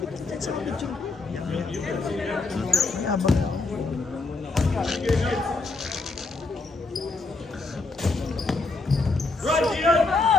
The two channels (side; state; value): right; quieter; 3.6 dB